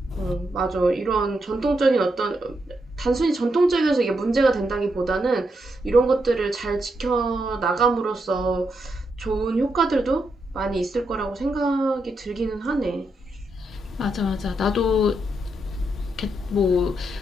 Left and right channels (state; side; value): normal; both; correlation 0.82